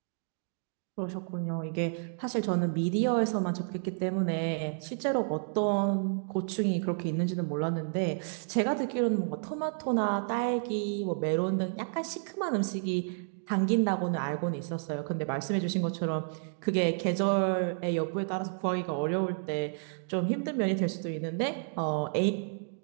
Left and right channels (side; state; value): left; silent; digital silence